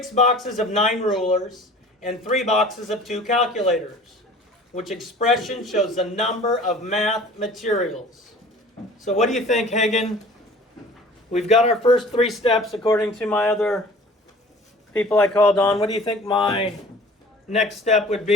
boxes of 9 rulers, and 3 boxes of 2 calculators, which expression shows the number of math materials. So what do you think, Hagen? We've got our first 3 steps according to my other people I called on. What do you think my next step would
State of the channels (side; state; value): both; normal; correlation 0.46